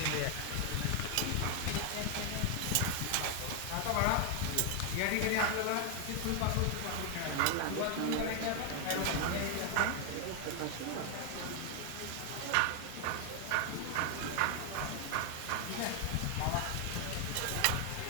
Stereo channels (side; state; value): both; different; correlation 0.00